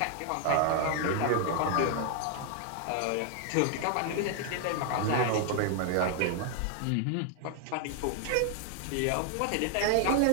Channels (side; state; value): both; different; correlation 0.00